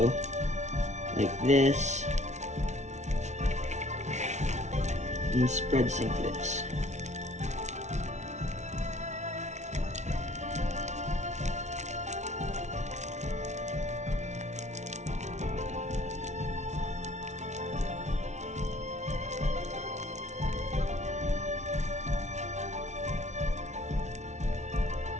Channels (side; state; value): left; late; 0.33 ms